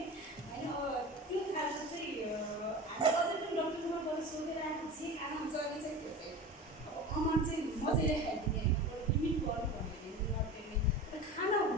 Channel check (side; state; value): both; normal; correlation 0.32